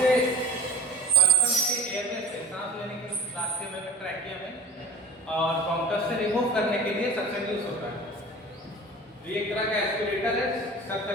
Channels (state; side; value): normal; both; correlation 0.38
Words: पर्सन के एयरवे से, सांस लेने के रास्ते में, ट्रैकिया में और ब्रोंकस से रिमूव करने के लिए सक्शन यूज होता है। ये एक तरह का एस्पिरेटर है, शक